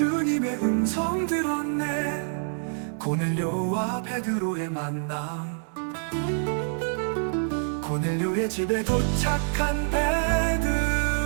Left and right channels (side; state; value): left; silent; 61 dB below the other